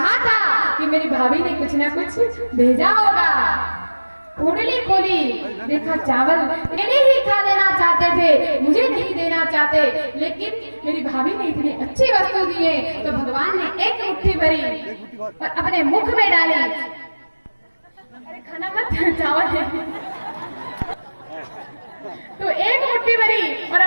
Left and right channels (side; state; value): both; inverted; correlation -1.00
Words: था कि मेरी भाभी ने कुछ ना कुछ भेजा होगा। पोटली खोली, देखा चावल मैंने ही खा देना चाहते थे, मुझे नहीं देना चाहते, लेकिन मेरी भाभी ने इतनी अच्छी वस्तु दी है तो भगवान ने एक मुट्ठी भरी और अपने मुख में डाली। अरे खाना मत, चावल तो एक मुट्ठी भरी और